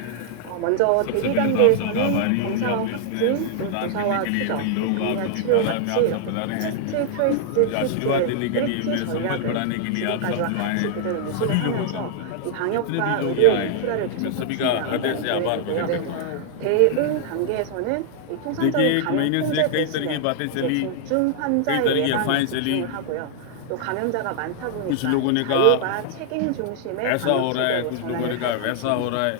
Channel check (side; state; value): both; different; correlation 0.00